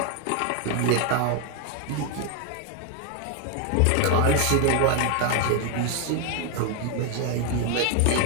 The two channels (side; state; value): both; different; correlation 0.01